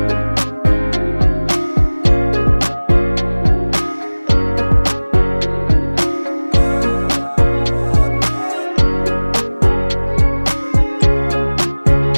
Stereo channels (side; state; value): both; inverted; correlation -1.00